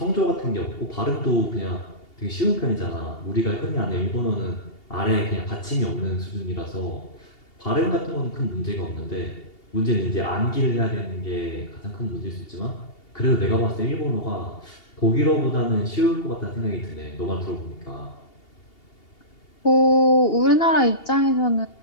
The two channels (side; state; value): right; late; 2.8 ms